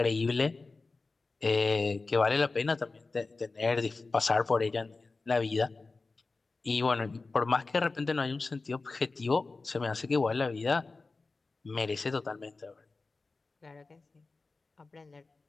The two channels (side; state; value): right; quieter; 3.8 dB